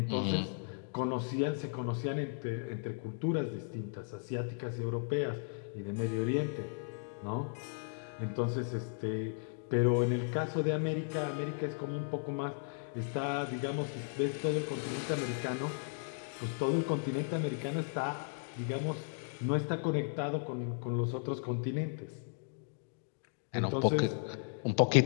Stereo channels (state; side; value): silent; right; digital silence